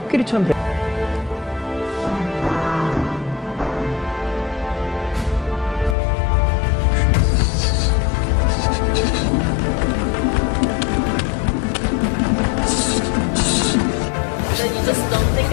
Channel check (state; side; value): drops out; right; at 6.0 s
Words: 코끼리처럼 돼. Then you just don't think